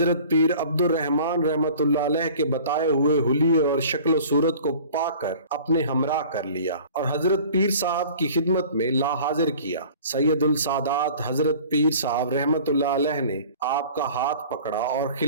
پیر عبد الرحمن رحمت اللہ علیہ کے بتائے ہوئے حلیے اور شکل و صورت کو پا کر اپنے ہمراہ کر لیا اور حضرت پیر صاحب کی خدمت میں لا حاضر کیا۔ سید السادات حضرت پیر صاحب رحمت اللہ علیہ نے آپ کا ہاتھ پکڑا اور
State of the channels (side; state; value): both; inverted; correlation -0.46